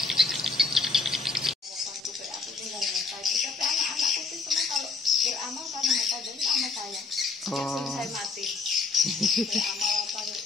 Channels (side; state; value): right; quieter; 4.1 dB